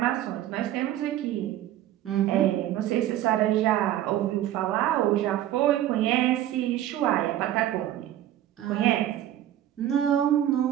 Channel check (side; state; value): left; quieter; 12.5 dB